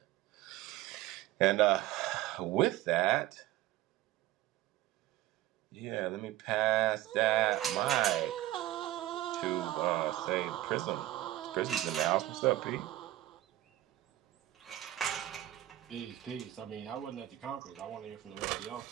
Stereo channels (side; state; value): left; quieter; 14.9 dB